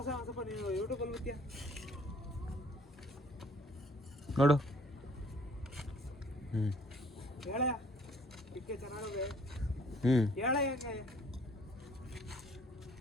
ಒಂದು ಸ್ವಲ್ಪ ನೀವು ಯೂಟ್ಯೂಬಲ್ಲಿ ಬಿತ್ತೀಯ ನೋಡು. ಹೇಳ ಟಿಕ್ಕೆ ಚೆನ್ನಾಗಿದೆ. ಹೇಳ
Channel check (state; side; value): normal; both; correlation 0.58